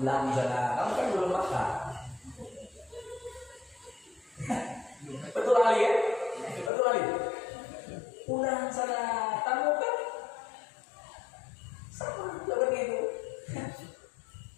sana, kamu kan belum makan. Betul Ali ya? Betul Ali. Pulang sana, kamu kan sama seperti itu.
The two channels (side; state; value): right; drops out; at 6.7 s